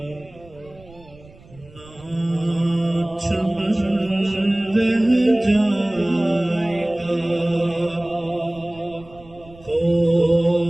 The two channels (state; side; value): noise; right; rumble, 23 dB below the sound